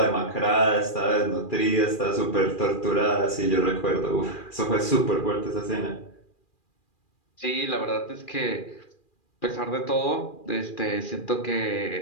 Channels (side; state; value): right; late; 2.4 ms